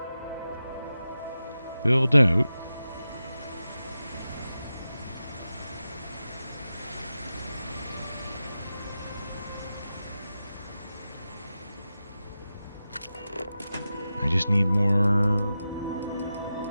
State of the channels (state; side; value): inverted; both; correlation -0.92